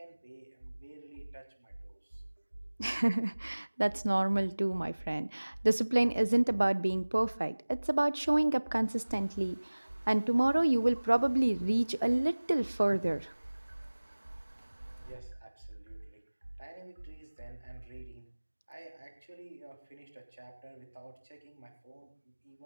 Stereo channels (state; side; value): inverted; both; correlation -1.00